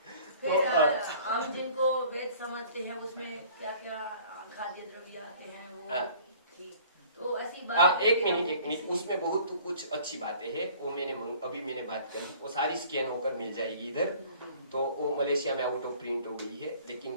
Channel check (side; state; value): both; inverted; correlation -0.51